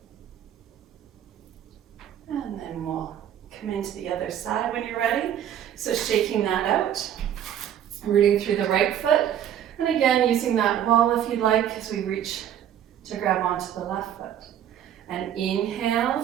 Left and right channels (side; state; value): left; quieter; 10.3 dB